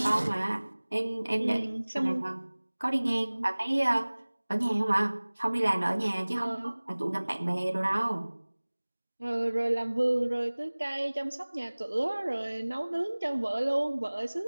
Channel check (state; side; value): inverted; both; correlation -1.00